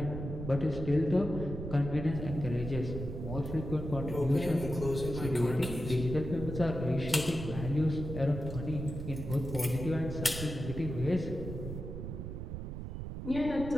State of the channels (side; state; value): right; noise; rumble, 6 dB below the sound